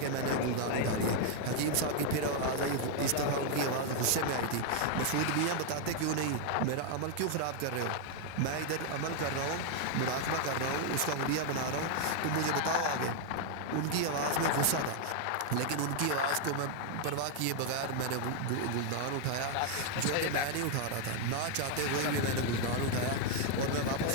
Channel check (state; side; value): different; both; correlation 0.00